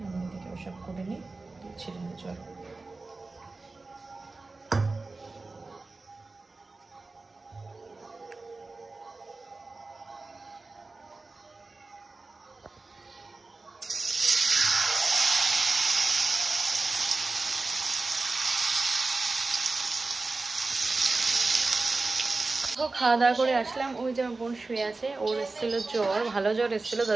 আমি এদিকে ওসব করে নিই, ছেড়ে নিই। চলো খাওয়া দাওয়া করে আসলাম। ওই যে আমার বোন শুয়ে আছে, ওর এসেছিলো জ্বর, ভালো জ্বর এসেছিলো,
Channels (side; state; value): left; quieter; 3.6 dB